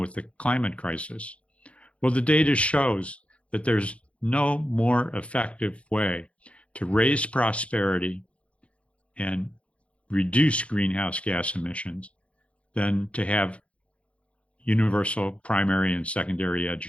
the climate crisis? Well, the data shows that there's no more effective way to raise prosperity and reduce greenhouse gas emissions than to have universal primary and secondary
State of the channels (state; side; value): late; right; 0.062 ms